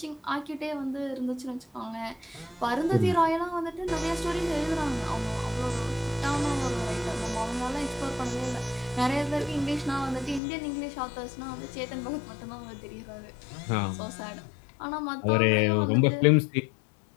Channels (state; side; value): drops out; right; at 10.4 s